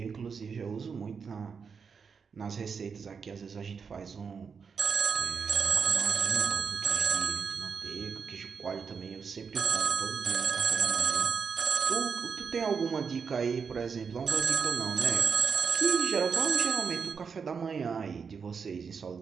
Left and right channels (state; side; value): quieter; left; 5.9 dB